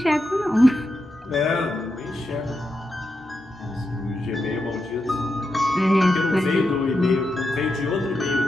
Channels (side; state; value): both; normal; correlation 0.87